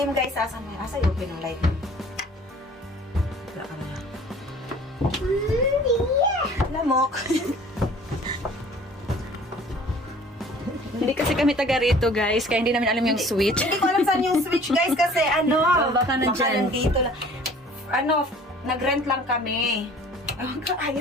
guys. Asa open ang light. Yeah! Lamok. Hindi kasi kami taga rito, guys, kaya hindi namin alam yung switch. Hindi ko alam saan yung switch, guys, kasi baka nandyan. nandito lang. Nag-rent lang kami.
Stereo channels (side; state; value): both; normal; correlation 0.50